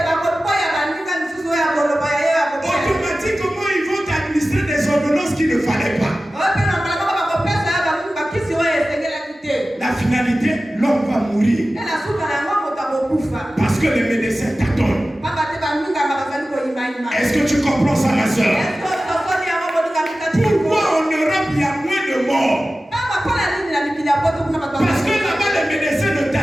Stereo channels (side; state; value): both; normal; correlation 0.95